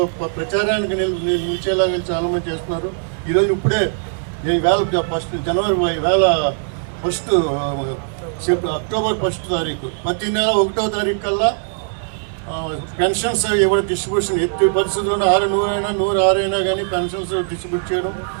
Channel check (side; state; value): left; silent; digital silence